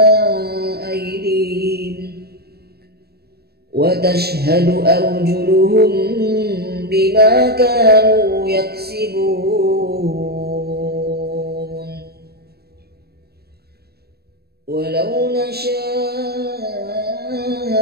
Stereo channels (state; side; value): late; left; 0.46 ms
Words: أيديهم وتشهد أرجلهم بما كانوا يكسبون ولو نشاء